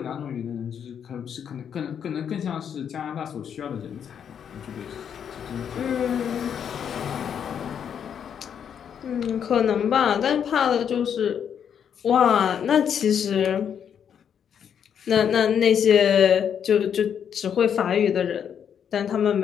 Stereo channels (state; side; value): quieter; right; 8.2 dB